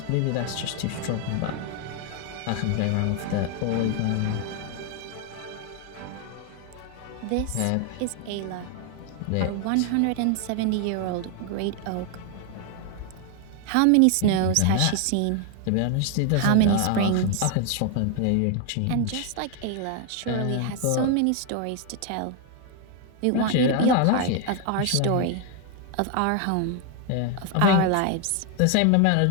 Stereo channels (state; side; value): different; both; correlation 0.01